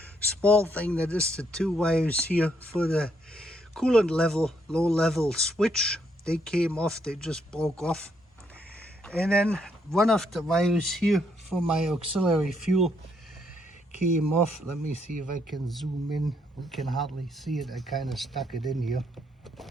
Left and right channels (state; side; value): normal; both; correlation 0.73